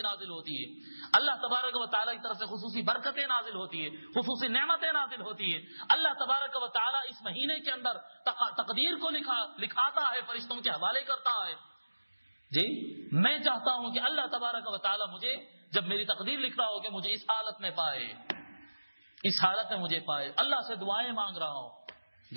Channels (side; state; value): both; inverted; correlation -1.00